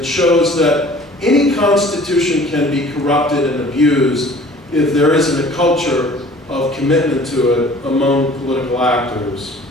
shows that any constitution can be corrupted and abused if there isn't a culture of commitment to it among political actors.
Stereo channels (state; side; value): normal; both; correlation 0.49